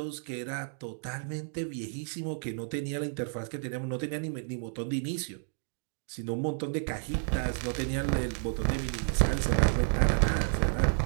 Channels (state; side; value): silent; left; digital silence